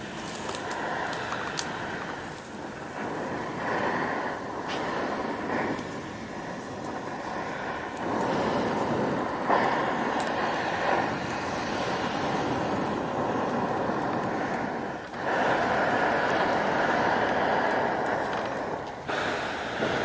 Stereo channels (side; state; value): both; identical; correlation 1.00